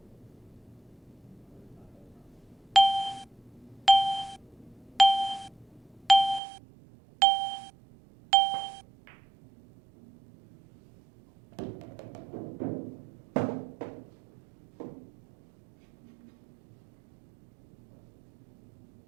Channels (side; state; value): left; drops out; at 6.4 s